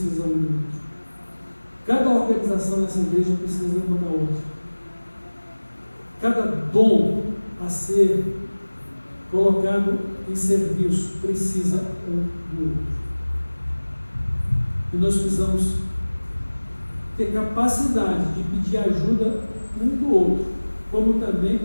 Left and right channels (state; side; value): inverted; both; correlation -1.00